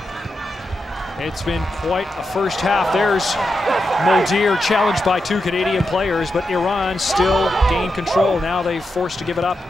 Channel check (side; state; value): both; normal; correlation 0.87